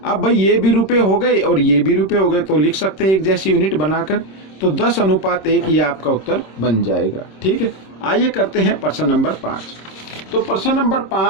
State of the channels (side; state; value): right; late; 26 ms